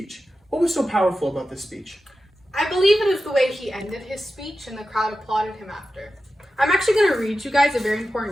What was so powerful about this speech? I believe it is the way he ended his speech and the crowd applauded him after. I'm actually going to read you guys a very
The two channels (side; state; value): both; normal; correlation 0.92